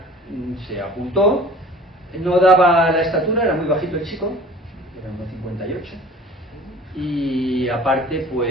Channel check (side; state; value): both; normal; correlation 0.45